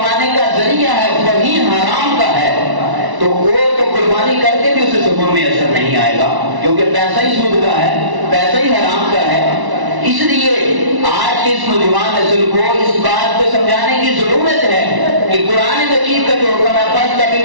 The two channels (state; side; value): late; left; 1.1 ms